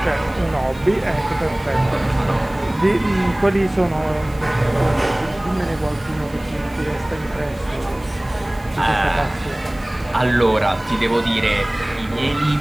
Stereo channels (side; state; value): right; noise; hiss, 26 dB below the sound